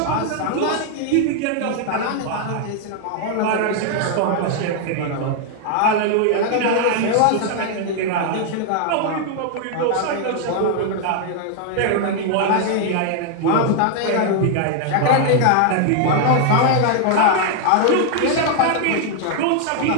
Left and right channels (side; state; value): both; different; correlation 0.00